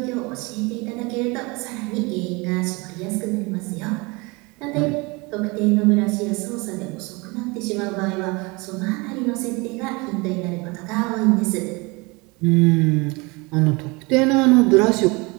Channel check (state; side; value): quieter; left; 26.5 dB